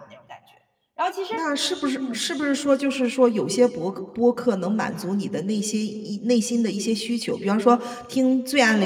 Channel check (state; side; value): identical; both; correlation 1.00